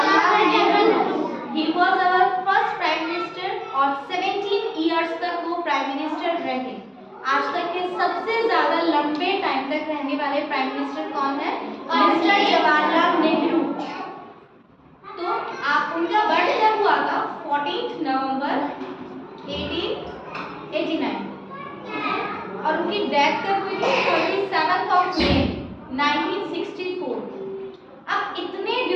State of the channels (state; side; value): identical; both; correlation 1.00